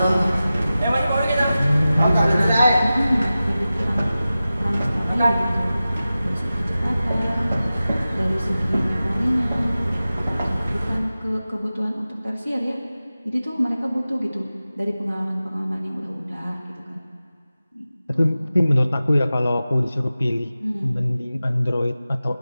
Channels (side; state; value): both; inverted; correlation -0.95